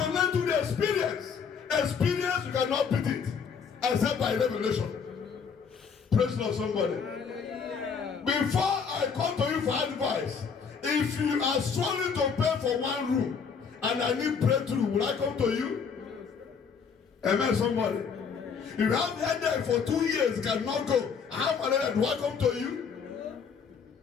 learn through the experience. Experience, you cannot beat it except by revelation. Praise God, somebody. Hallelujah. Before I come to you for advice, if you are struggling to pay for one room and I need breakthrough, will I come to you? Amen, somebody. If you have headache for 2 years, cannot go. I have malaria, do I come to you?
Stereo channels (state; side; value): quieter; right; 6.2 dB